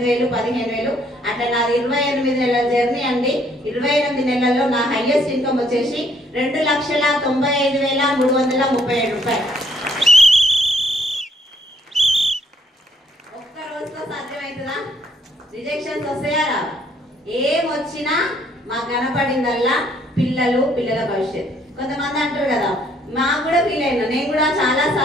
15,000 అట్లా నాది 28 నెలల జర్నీ అండి. 28 నెలల్లో నా హైయెస్ట్ ఇన్కమ్ వచ్చేసి 2,95,337 రూపాయలు. ఒక్క రోజుతో సాధ్యమవుతుందా? రిజెక్షన్స్ వస్తాయా? ఏమొచ్చినా మాకు కనపడిందల్లా పిల్లల భవిష్యత్తు. కొంతమంది అంటారు కదా, మాకు కూడా ఫీల్ అయినా. నేను కూడా చాలా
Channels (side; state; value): both; normal; correlation 0.67